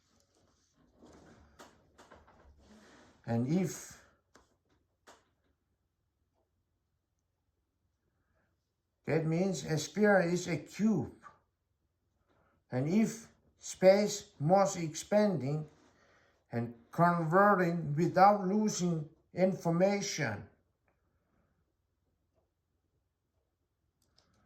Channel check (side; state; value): both; identical; correlation 1.00